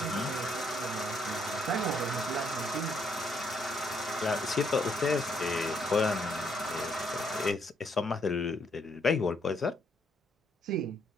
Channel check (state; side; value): normal; both; correlation 0.71